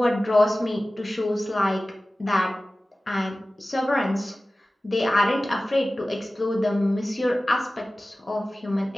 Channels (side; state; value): both; normal; correlation 0.97